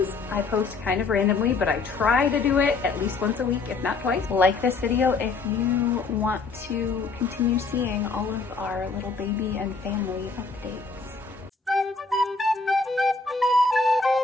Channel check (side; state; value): right; quieter; 4.2 dB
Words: I post kind of randomly, but I try to do it at least once a week, if not twice. Like this video if you want to continue seeing all of our little baby and family updates.